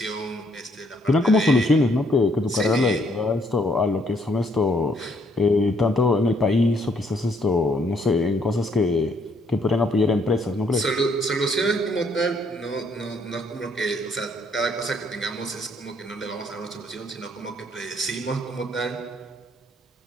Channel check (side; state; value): both; normal; correlation 0.69